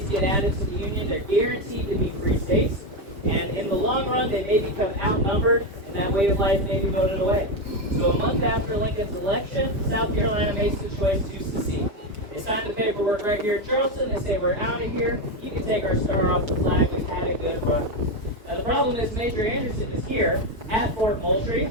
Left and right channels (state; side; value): late; left; 5.0 ms